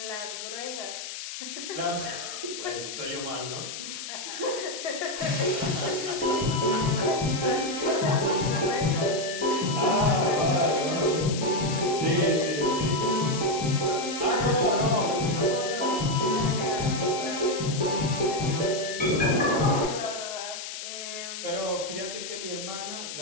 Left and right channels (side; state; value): left; noise; hiss, 8 dB below the sound